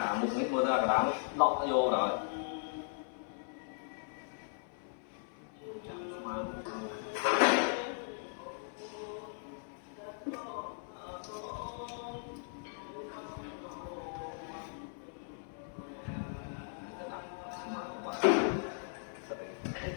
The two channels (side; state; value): right; silent; 53 dB below the other